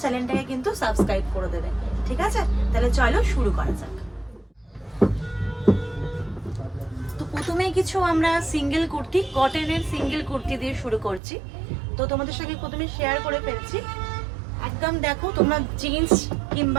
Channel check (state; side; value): drops out; left; at 11.2 s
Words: চ্যানেলটাকে কিন্তু সাবস্ক্রাইব করে দেবে। ঠিক আছে, তাহলে চলো শুরু করা যাক। তো প্রথমেই কিছু আমরা সিঙ্গেল কুর্তি, কটনের সিঙ্গেল কুর্তি দিয়ে শুরু করছি। তো তোমাদের সঙ্গে প্রথমে শেয়ার করে ফেলছি। একদম দেখো, তোমরা জিন্স